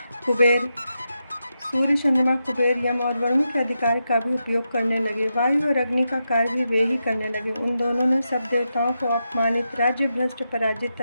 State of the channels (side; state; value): both; inverted; correlation -0.87